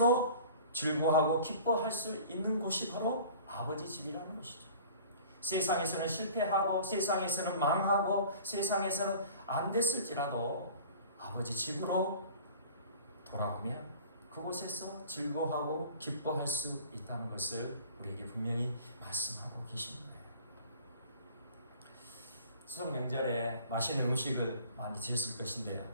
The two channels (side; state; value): both; inverted; correlation -0.45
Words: 즐거워하고 기뻐할 수 있는 곳이 바로 아버지 집이라는 것이죠. 세상에서는 실패하고 세상에서는 망하고 세상에서는 안 됐을지라도 아버지 집으로 돌아오면 그곳에서 즐거워하고 기뻐할 수 있다는 것을 우리에게 분명히 말씀하고 계십니다. 추석 명절에 맛있는 음식을 많이 드셨을 것인데요.